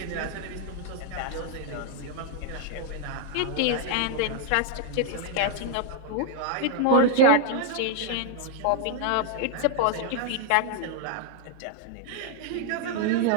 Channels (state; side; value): different; both; correlation 0.00